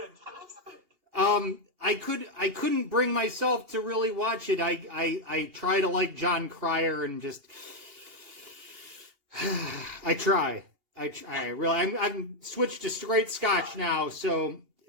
I couldn't bring myself to really watch it. I try to like John Cryer and just I try. I'm switched to straight Scotch now, so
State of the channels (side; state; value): left; late; 2.8 ms